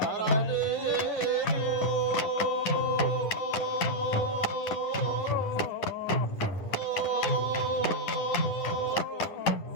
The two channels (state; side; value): late; right; 10 ms